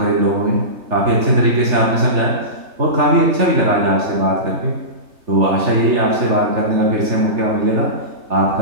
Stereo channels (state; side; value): late; left; 3.3 ms